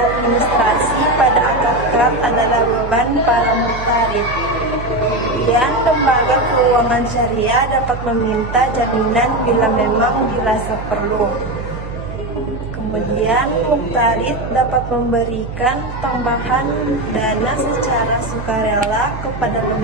administrasi pada akad kad adalah beban para muhtarid. Kemudian, lembaga keuangan syariah dapat meminta jaminan bila memang dirasa perlu. Kemudian, muhtarid dapat memberikan tambahan dana secara sukarela kepada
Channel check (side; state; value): right; noise; hum, 9 dB below the sound